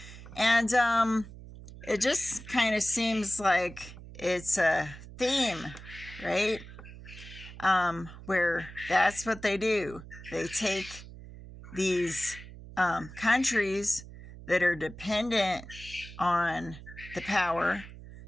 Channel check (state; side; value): noise; right; hum, 15 dB below the sound